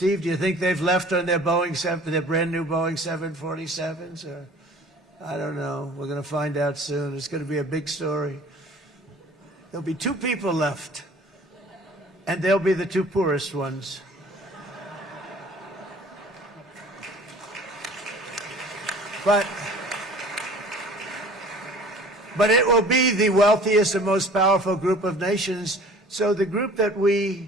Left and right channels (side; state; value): both; normal; correlation 0.48